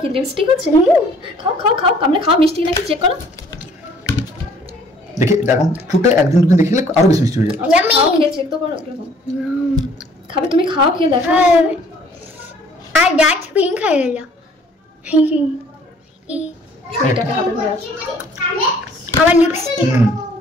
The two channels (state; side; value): normal; both; correlation 0.57